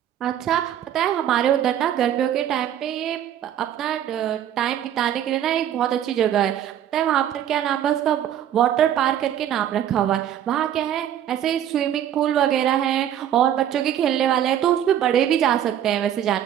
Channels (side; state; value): left; quieter; 10.6 dB